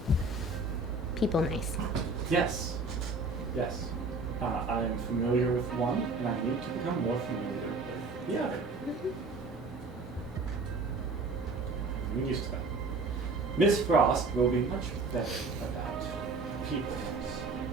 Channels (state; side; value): quieter; left; 3.5 dB